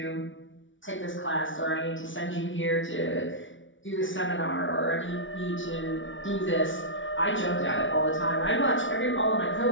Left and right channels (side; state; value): right; late; 0.56 ms